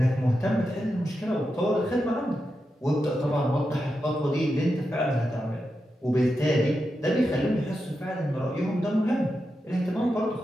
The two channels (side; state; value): both; normal; correlation 0.88